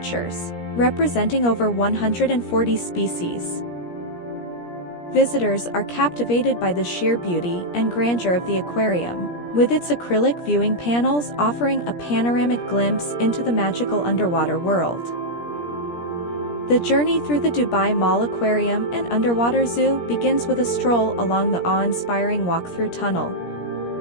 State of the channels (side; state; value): right; late; 17 ms